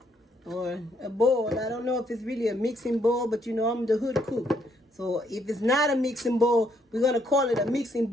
or a bowl. I don't know if it's really a mixing bowl, but you know I'm the hood cook. So if it's not a mixing bowl, we're going to call it a mixing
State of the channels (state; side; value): normal; both; correlation 0.71